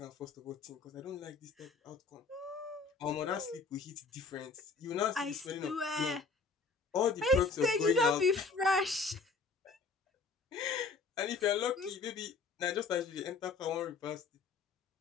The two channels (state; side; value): quieter; right; 4.3 dB